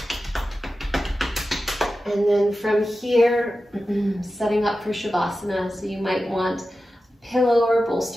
And then from here, setting up for Shavasana. So you might want a pillow or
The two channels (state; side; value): normal; both; correlation 0.93